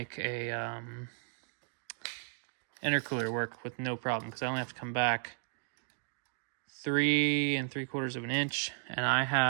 a intercooler work with no problem, because I only have to come back 3 3/4 of an inch, and I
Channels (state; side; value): silent; left; 55 dB below the other